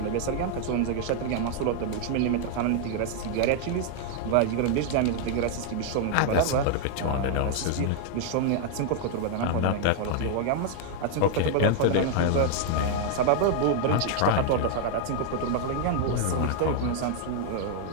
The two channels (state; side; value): different; both; correlation -0.01